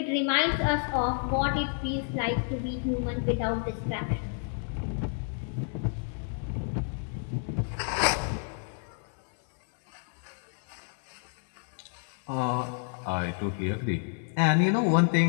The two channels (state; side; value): silent; right; 58 dB below the other